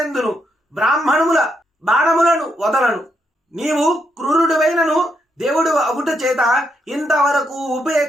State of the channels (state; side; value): normal; both; correlation 0.79